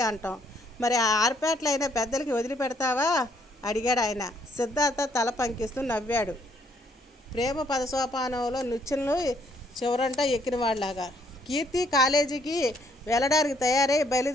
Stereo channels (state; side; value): normal; both; correlation 0.68